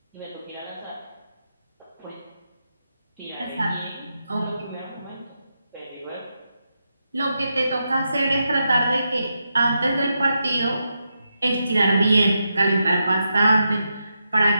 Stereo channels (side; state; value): both; inverted; correlation -0.86